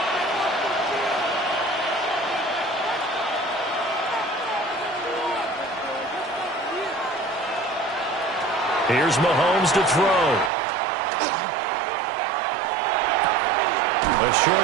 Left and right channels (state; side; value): drops out; left; at 10.5 s